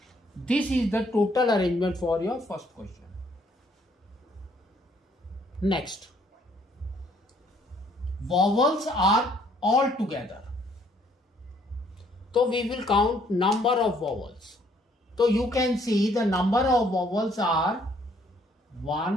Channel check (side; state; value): both; normal; correlation 0.64